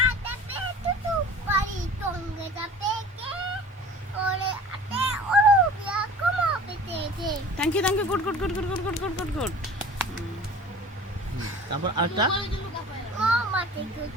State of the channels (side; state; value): both; normal; correlation 0.43